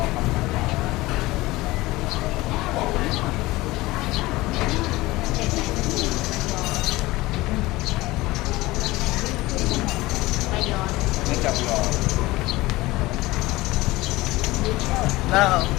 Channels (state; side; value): quieter; right; 19.6 dB